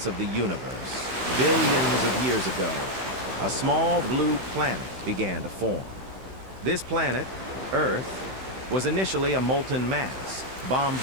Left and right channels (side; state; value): left; late; 16 ms